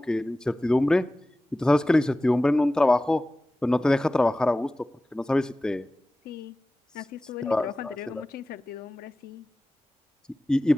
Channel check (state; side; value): normal; both; correlation 0.97